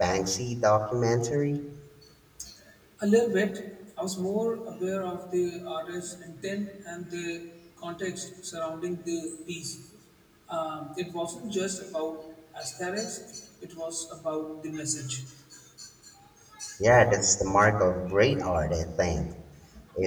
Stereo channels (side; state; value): both; identical; correlation 1.00